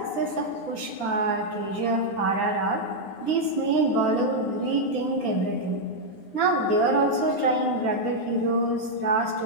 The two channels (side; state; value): right; late; 9.8 ms